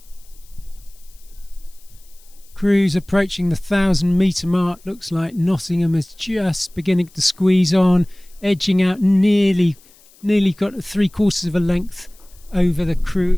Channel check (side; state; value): left; noise; hiss, 28 dB below the sound